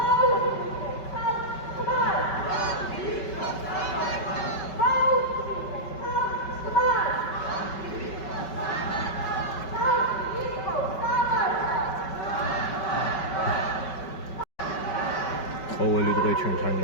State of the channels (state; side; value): late; right; 5.3 ms